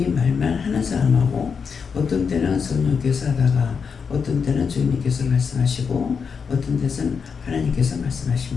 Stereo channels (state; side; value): quieter; right; 6.0 dB